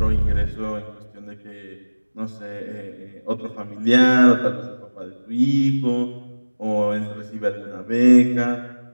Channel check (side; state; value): both; inverted; correlation -1.00